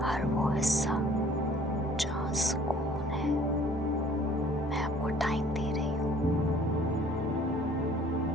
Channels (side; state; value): both; normal; correlation 0.54